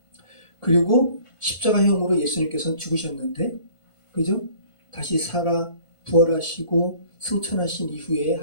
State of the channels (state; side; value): late; right; 1.5 ms